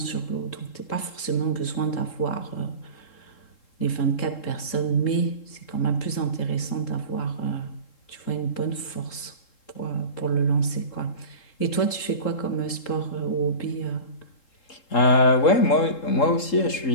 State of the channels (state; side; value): late; right; 3.7 ms